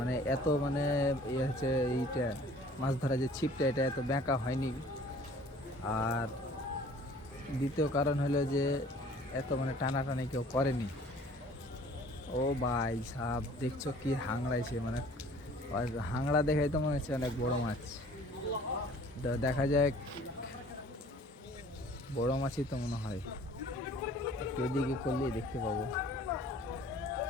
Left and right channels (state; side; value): normal; both; correlation 0.51